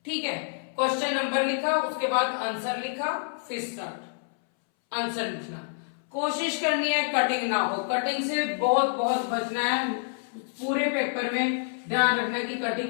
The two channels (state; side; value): silent; right; 60 dB below the other